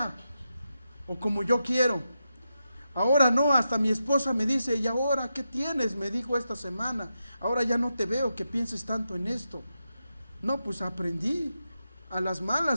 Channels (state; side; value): inverted; both; correlation -0.87